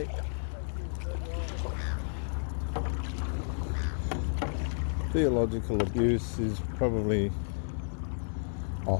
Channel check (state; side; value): silent; right; digital silence